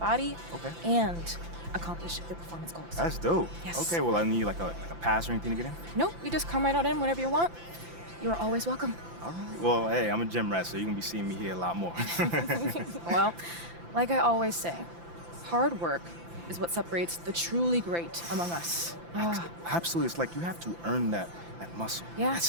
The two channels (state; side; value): late; left; 5.9 ms